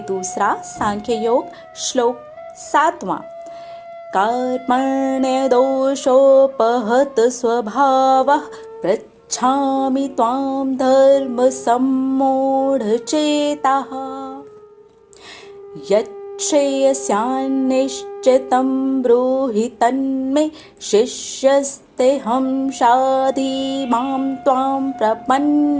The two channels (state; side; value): identical; both; correlation 1.00